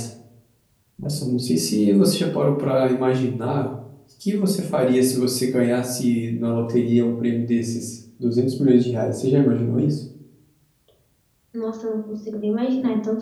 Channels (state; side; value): identical; both; correlation 1.00